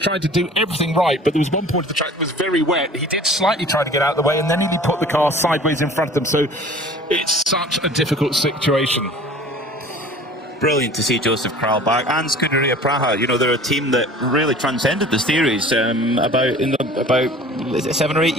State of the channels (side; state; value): both; normal; correlation 0.46